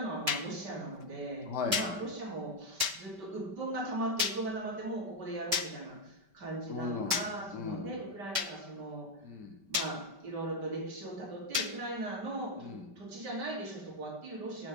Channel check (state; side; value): late; left; 5.1 ms